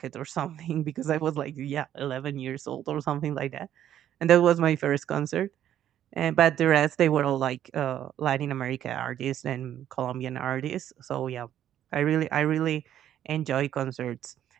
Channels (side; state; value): left; quieter; 11.0 dB